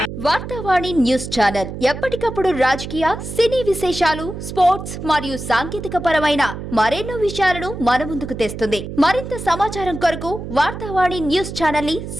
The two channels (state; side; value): noise; right; hum, 8 dB below the sound